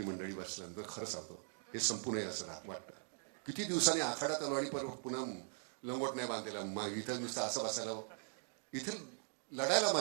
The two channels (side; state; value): left; silent; digital silence